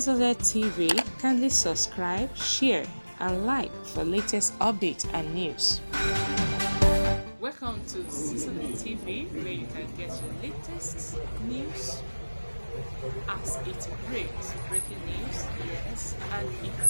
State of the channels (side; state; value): both; inverted; correlation -1.00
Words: TV. Kindly subscribe, share, and like for latest updates and news. Welcome to Zisodel TV, where you can get your latest news as it breaks. Breaking news, yes, and